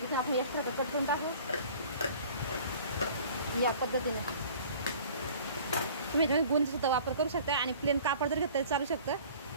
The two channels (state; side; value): inverted; both; correlation -0.48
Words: आपण एक्स्ट्रा कट करून टाकू या पद्धतीने। तुम्ही गुंज सुद्धा वापर करू शकता आणि प्लेन कापड जर घेतलं तरी चालू शकतं।